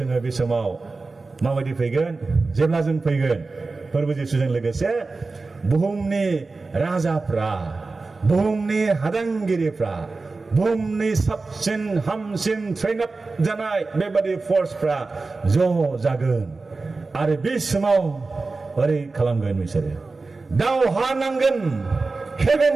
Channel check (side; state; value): left; quieter; 3.8 dB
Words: बे समाव माबायदि फैगोन जेब्ला जों फैगोन फोरबो जिसुजों लोगोसे बुहुमनि राजाफ्रा बुहुमनि हादांगिरिफ्रा बुहुमनि साबसिन हामसिन ट्रेन आप जानाय बेबादि फर्सफ्रा ज' जागोन आरो बे समाव ओरै खालामगोन बिसोरो दावहा नांगोन